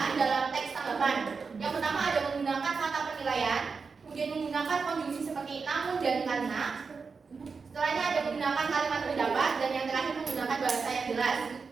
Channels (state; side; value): quieter; left; 5.0 dB